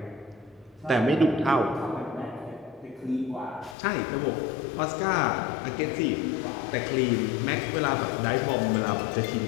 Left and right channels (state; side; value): drops out; right; at 3.8 s